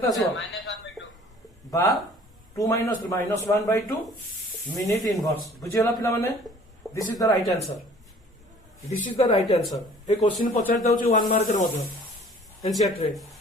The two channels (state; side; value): normal; both; correlation 0.52